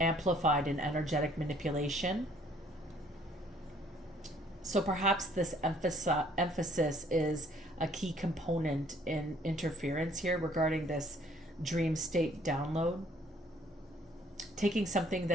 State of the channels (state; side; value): normal; both; correlation 0.60